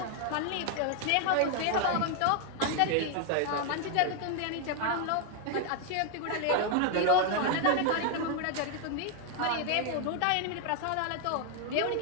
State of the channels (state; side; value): different; both; correlation 0.00